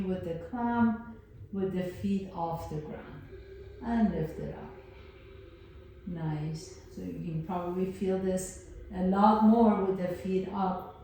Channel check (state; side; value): identical; both; correlation 1.00